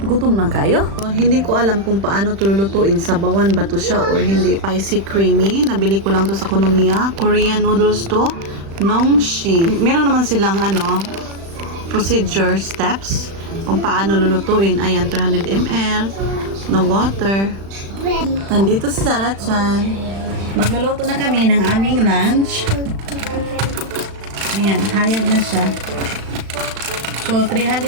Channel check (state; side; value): late; left; 36 ms